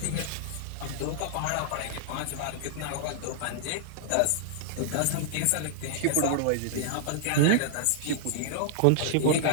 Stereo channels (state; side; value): different; both; correlation -0.01